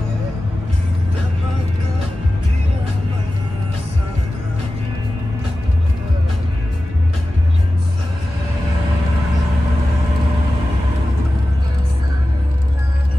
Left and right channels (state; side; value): normal; both; correlation 0.95